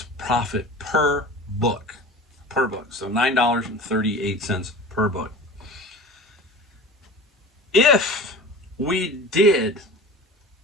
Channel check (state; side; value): normal; both; correlation 0.37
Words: profit per book. So $9.38 per book. If we did